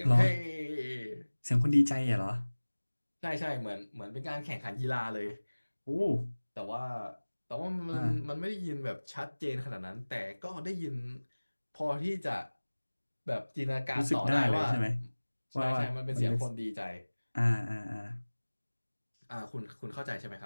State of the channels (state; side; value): inverted; both; correlation -1.00